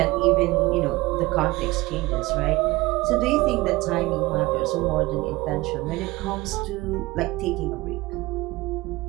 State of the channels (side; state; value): left; quieter; 20.6 dB